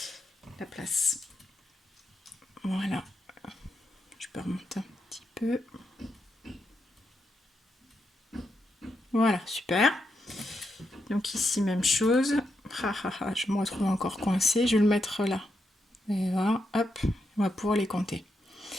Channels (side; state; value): both; normal; correlation 0.83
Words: la place. Voilà. Je peux remonter un petit peu. Voilà, super. Donc ici, même chose. Je me retrouve encore coincée. Je vais le mettre là. Et voilà, hop, on va pouvoir les compter.